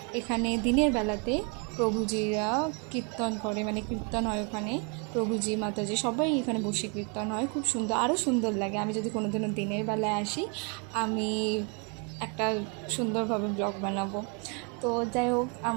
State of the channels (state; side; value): quieter; left; 36.1 dB